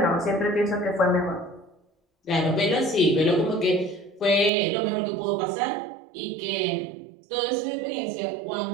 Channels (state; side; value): drops out; left; at 4.5 s